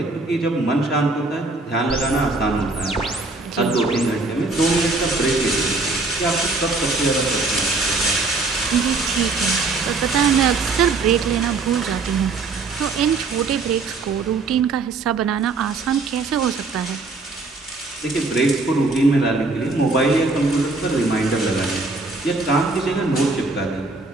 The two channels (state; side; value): quieter; left; 3.6 dB